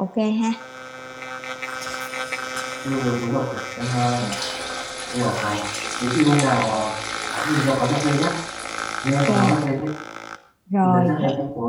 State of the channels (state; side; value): identical; both; correlation 1.00